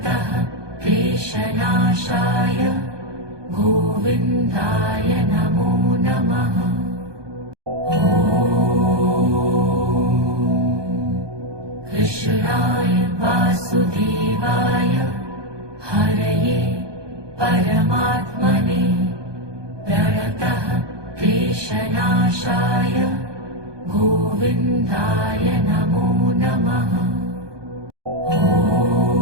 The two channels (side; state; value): left; late; 1.2 ms